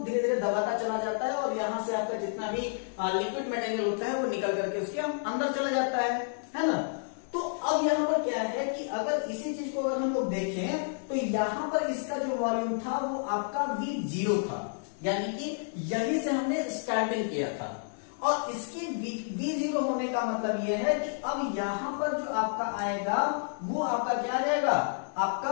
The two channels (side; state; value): right; silent; digital silence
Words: धीरे दबाता चला जाता है और यहां से आपका जितना भी लिक्विड मटेरियल होता है वो निकल करके उसके अंदर चला जाता है ना। तो अब यहाँ पर क्या है कि अगर इसी चीज को अगर हम लोग देखें तो यहाँ पर इसका जो वॉल्यूम था वो आपका V0 था, यानी कि यही से हमने स्टार्टिंग किया था। और इसके V0 होने का मतलब यह है कि अब यहां पर जो आपका आएगा वो आपका क्या आ जाएगा, आपका